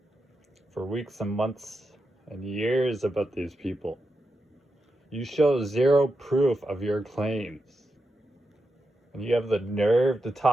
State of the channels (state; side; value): normal; both; correlation 0.87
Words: for weeks and months and years about these people, you show zero proof of your claims. And you have the nerve to